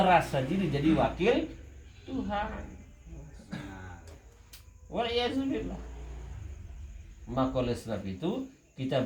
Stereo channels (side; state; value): both; identical; correlation 1.00